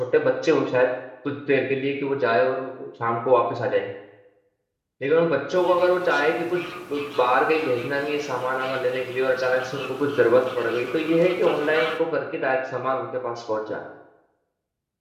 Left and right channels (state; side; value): identical; both; correlation 1.00